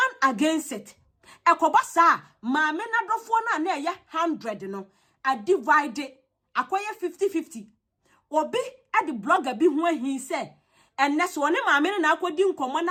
against it ekobasa maame na dofo na eye 100 no a divide akoye 50-50 obi at the blogger be ho ahin say enne so ne maame na akodi nkomo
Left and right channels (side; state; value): both; identical; correlation 1.00